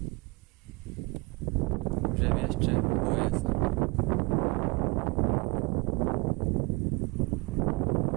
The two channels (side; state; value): left; quieter; 26.7 dB